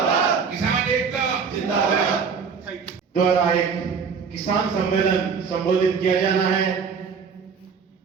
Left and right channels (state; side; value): quieter; left; 6.0 dB